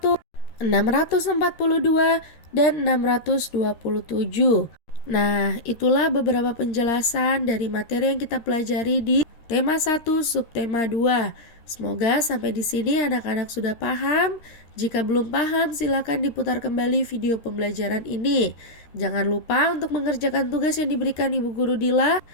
642, dan 627. Nah, itulah beberapa penjelasan dari materi yang kita pelajari di tema 1 subtema 2. Semoga sampai di sini anak-anak sudah paham. Jika belum paham, silakan diputar kembali video pembelajaran ini. Jangan lupa untuk mengerjakan tugas yang diberikan Ibu Guru Dila.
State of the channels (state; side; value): late; right; 13 ms